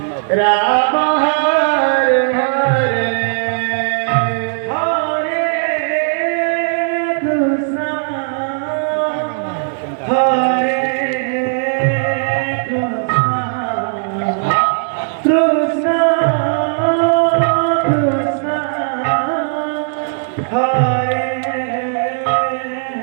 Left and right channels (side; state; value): left; silent; 67 dB below the other